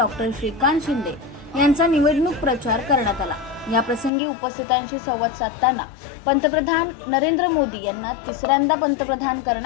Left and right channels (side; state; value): right; drops out; at 4.1 s